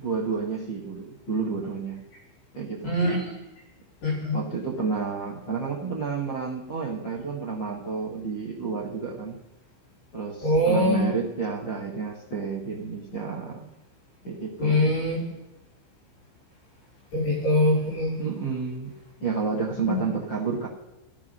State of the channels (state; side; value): late; right; 15 ms